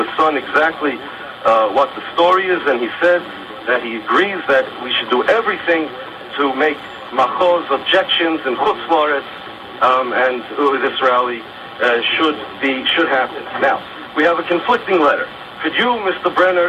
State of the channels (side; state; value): both; identical; correlation 1.00